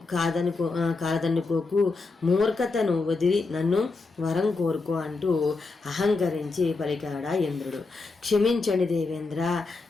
కాదనుకోకు. మూర్ఖతను వదిలి నన్ను వరం కోరుకో అంటూ అహంకరించి పలికాడా ఇంద్రుడు. క్షమించండి దేవేంద్ర,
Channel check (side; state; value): right; quieter; 3.8 dB